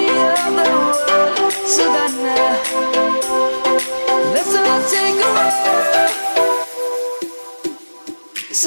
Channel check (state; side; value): inverted; both; correlation -1.00